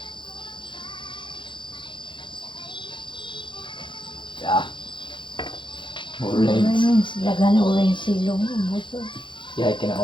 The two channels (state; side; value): late; right; 0.23 ms